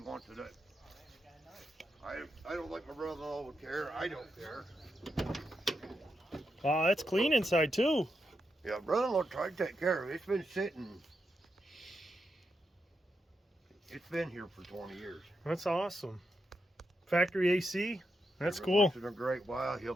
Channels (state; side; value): normal; both; correlation 0.84